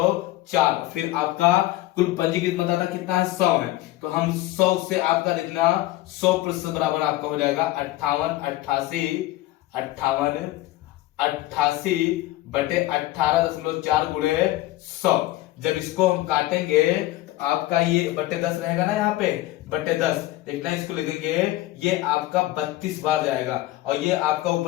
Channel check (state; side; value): quieter; right; 16.7 dB